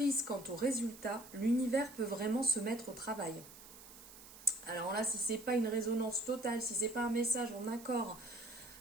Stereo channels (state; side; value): noise; right; hiss, 18 dB below the sound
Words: quant au résultat, l'univers peut vraiment se mettre au travail. Alors là, si ce n'est pas une résonance totale, si ce n'est pas un message en accord